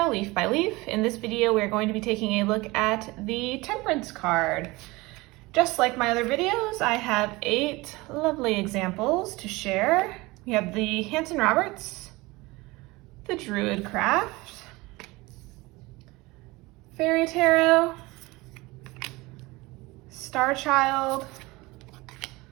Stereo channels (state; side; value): quieter; left; 22.1 dB